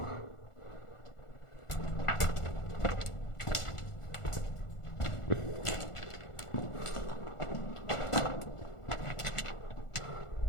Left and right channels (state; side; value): late; right; 1.4 ms